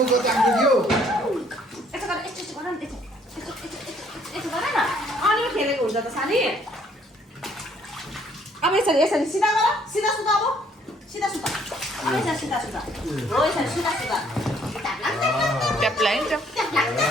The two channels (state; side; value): normal; both; correlation 0.64